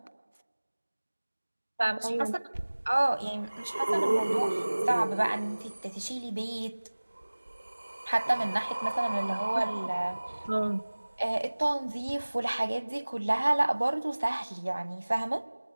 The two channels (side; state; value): both; inverted; correlation -1.00